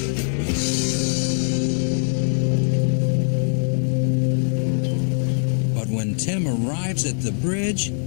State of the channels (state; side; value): silent; right; digital silence